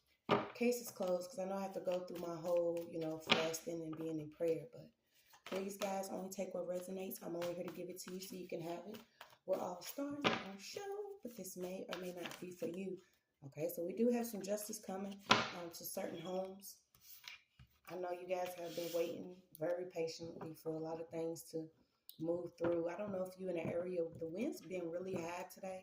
cases closed, because I know I have to go through my whole, fasting and being in prayer. But please, guys, only take what resonates. I'm only here to give it to you so you can have it. We're all stars on show, but this may or may not be for you. Okay, so we do have some justice coming to certain homes. I know you guys have been waiting very patiently for a lot of things to move through. I don't know if you're in an area with the winds being really high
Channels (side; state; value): both; identical; correlation 1.00